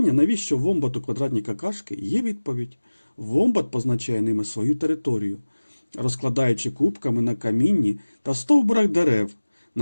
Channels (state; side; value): inverted; both; correlation -1.00